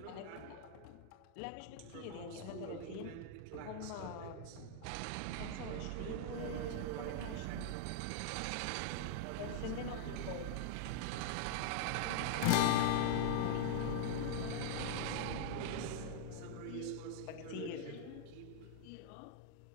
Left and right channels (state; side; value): different; both; correlation -0.01